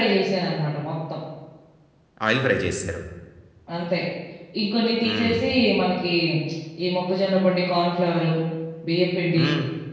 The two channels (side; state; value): both; identical; correlation 1.00